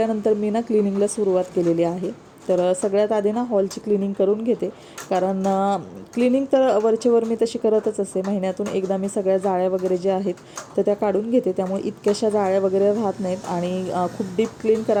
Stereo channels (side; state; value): both; identical; correlation 1.00